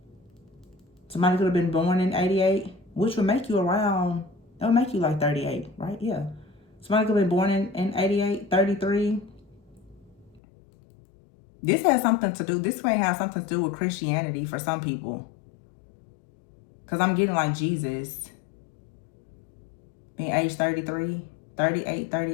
Somebody could have been born in 88, which would make you around, that would make you like 38, right? Yeah. Somebody could have been born in 88, 33. This has something to do, this may have something to do with Christianity for some people. Because I'm getting like Jesus being age 33, 38,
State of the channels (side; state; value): right; drops out; at 10.4 s